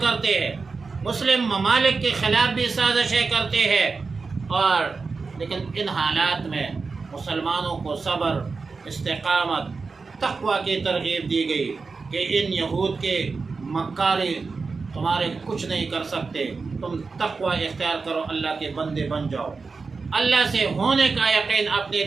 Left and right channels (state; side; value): quieter; left; 4.5 dB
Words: کرتے ہیں، مسلم ممالک کے خلاف بھی سازشیں کرتے ہیں. اور لیکن ان حالات میں مسلمانوں کو صبر، استقامت، تقوی کی ترغیب دی گئی کہ ان یہود کے مکاری تمہارے کچھ نہیں کر سکتے، تم تقوی اختیار کرو، اللہ کے بندے بن جاؤ، اللہ سے ہونے کا یقین اپنے